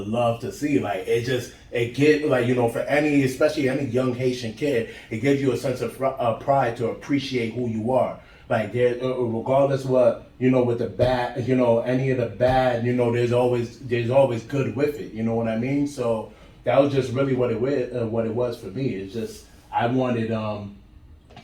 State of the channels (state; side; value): identical; both; correlation 1.00